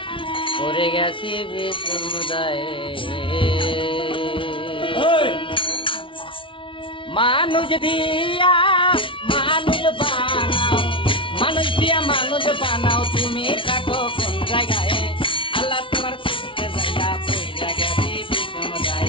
পড়ে গেছি সমুদায় মানুষ দিয়া মানুষ বানাও মানুষ দিয়া মানুষ বানাও তুমি থাকো কোন জায়গায় আল্লাহ তোমার খুঁজতে যাইয়া পড়ে গেছি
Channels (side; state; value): right; late; 0.25 ms